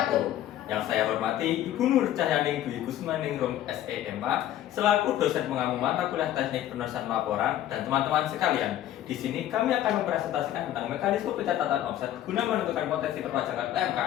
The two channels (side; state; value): right; quieter; 12.4 dB